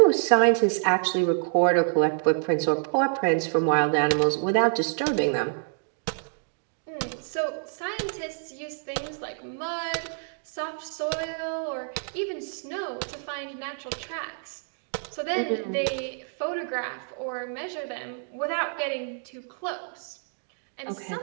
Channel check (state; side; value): silent; left; digital silence